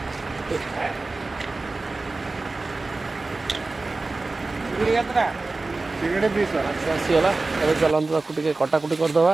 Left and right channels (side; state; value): left; quieter; 3.4 dB